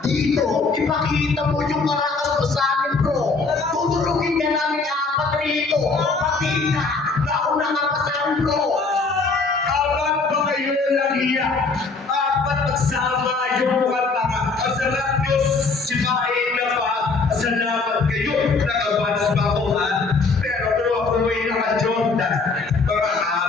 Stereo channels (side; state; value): right; quieter; 4.1 dB